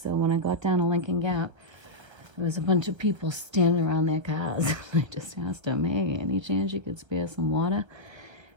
So when I got down to Lincoln Gap, there was a bunch of people standing around their cars. I just asked them, hey, any chance you could spare some water?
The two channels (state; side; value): late; left; 1.3 ms